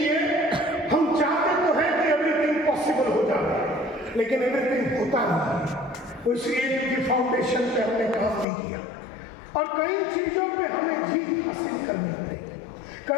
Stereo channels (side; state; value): right; drops out; at 8.5 s